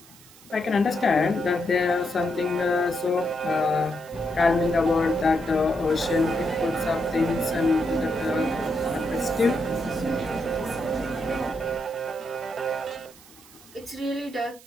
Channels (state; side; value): noise; right; hiss, 23 dB below the sound